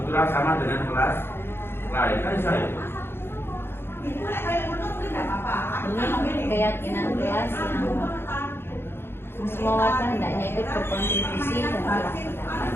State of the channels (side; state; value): right; late; 0.11 ms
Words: sama dengan kelas lain kan saya. Ini keyakinan kelas yang semua warga hendaknya ikut berkontribusi dan